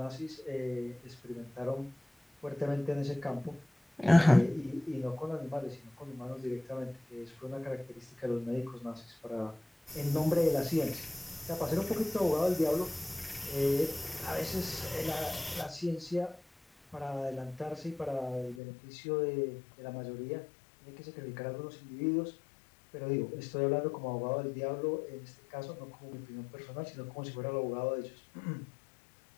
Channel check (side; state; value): right; drops out; at 18.6 s